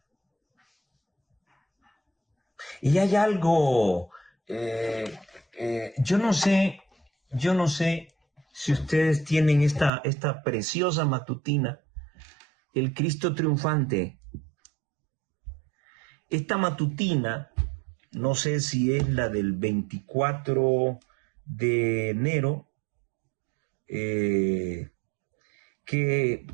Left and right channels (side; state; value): left; drops out; at 9.9 s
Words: Y hay algo, yo no sé si ustedes tienen esta preciosa matutina, el Cristo triunfante. Esta matutina, no sé si es la del 24 de enero,